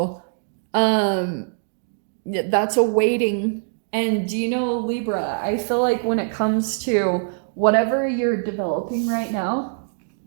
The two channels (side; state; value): left; silent; digital silence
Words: that's a waiting. And do you know, Libra, I feel like when it comes to whatever you're developing right now,